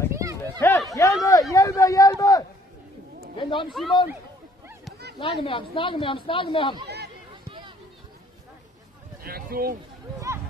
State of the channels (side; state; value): both; normal; correlation 0.61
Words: Hey, hjælpe! Vend om, Simon. Snakke med ham.